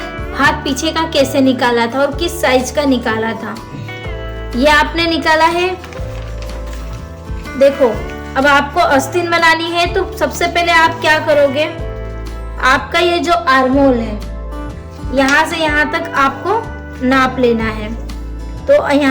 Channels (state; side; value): identical; both; correlation 1.00